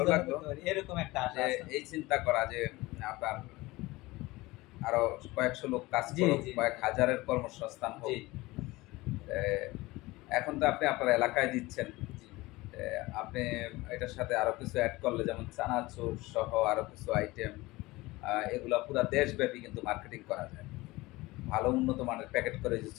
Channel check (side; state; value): right; quieter; 20.6 dB